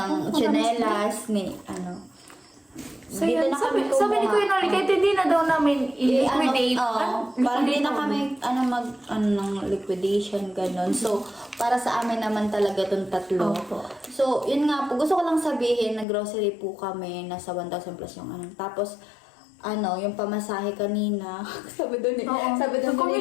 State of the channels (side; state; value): right; drops out; at 16.1 s